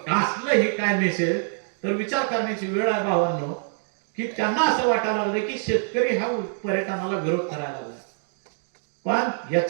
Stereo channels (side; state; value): left; silent; digital silence